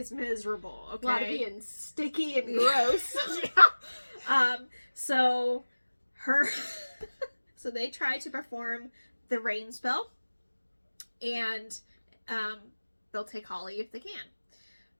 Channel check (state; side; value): inverted; both; correlation -1.00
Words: miserable, okay? A lot of being sticky and gross. Yeah. So they try to perform the rain spell, and they'll take Holly if they